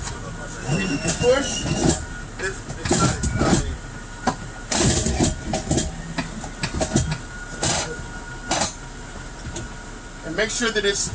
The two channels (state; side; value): identical; both; correlation 1.00